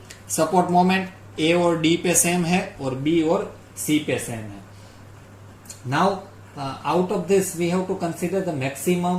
support moment. A और डी पे सेम है और बी और सी पे सेम है. Now out of this we have to consider the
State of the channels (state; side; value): identical; both; correlation 1.00